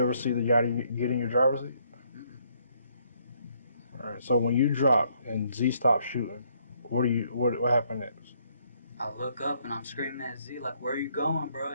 see the guy get in your driver's seat? Mm-mm. All right. So when you dropped and Z stopped shooting, what happened next? I look up and I'm screaming at Z, like, where are you going, bro?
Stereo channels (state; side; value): inverted; both; correlation -0.70